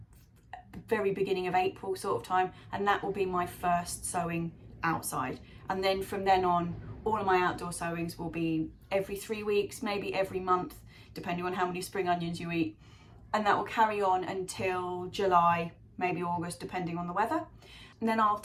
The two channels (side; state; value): both; identical; correlation 1.00